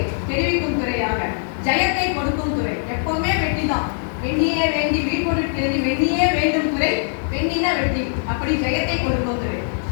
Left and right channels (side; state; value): right; silent; 65 dB below the other